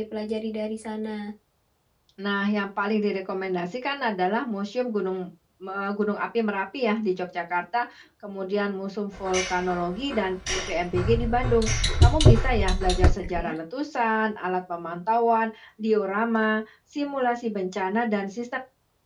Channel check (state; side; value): identical; both; correlation 1.00